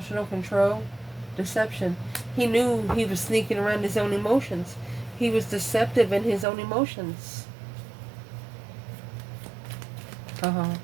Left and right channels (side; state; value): left; drops out; at 6.5 s